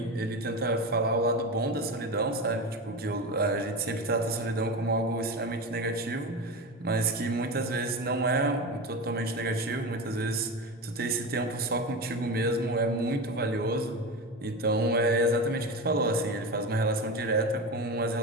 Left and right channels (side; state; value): both; normal; correlation 0.23